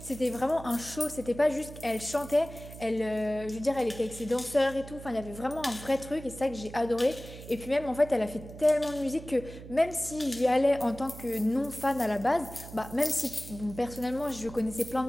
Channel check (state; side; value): noise; right; hum, 14 dB below the sound